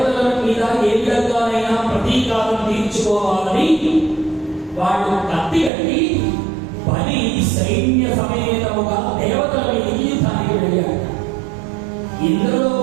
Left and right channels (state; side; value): drops out; left; at 5.7 s